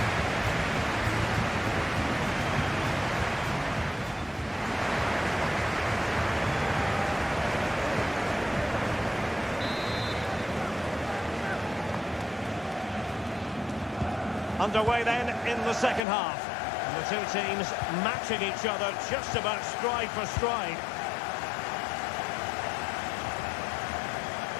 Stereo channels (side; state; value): right; drops out; at 16.1 s